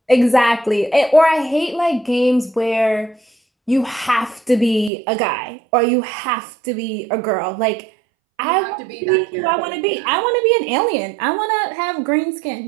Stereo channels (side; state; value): left; drops out; at 4.9 s